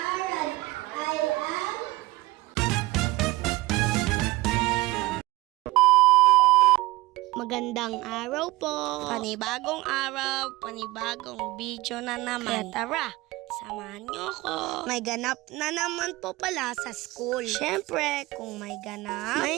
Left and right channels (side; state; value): left; quieter; 19.6 dB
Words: Magandang araw po. Panibagong araw, panibagong video na naman. Kaya tara, samahan niyo ako. May ganap na naman po pala sa school. Siyempre, kung may ganap,